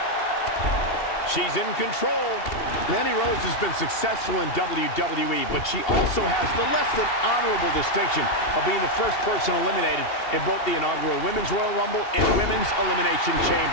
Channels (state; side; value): late; right; 2.7 ms